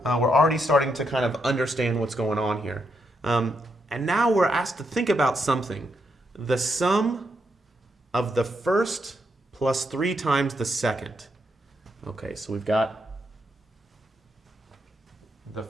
We're already starting to kind of understand what's going on here. And now we're asked to think about something. The sum of the first plus 3 times the second. Okay, so we've got the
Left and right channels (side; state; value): both; normal; correlation 0.80